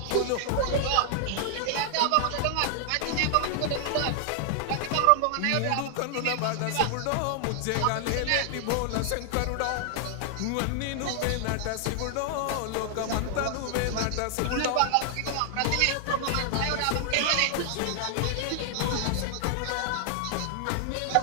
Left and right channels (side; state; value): both; different; correlation 0.00